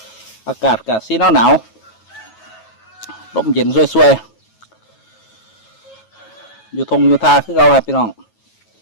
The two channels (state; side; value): late; right; 9.2 ms